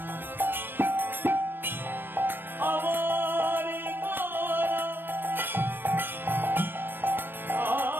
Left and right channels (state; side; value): late; left; 0.096 ms